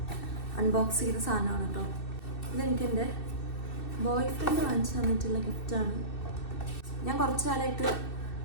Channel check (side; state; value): right; late; 2.6 ms